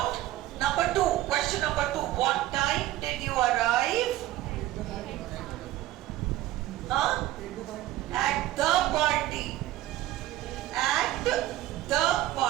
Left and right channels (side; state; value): left; quieter; 15.2 dB